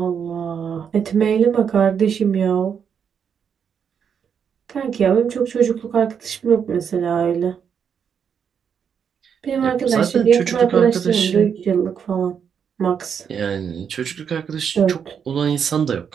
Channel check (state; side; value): quieter; left; 7.4 dB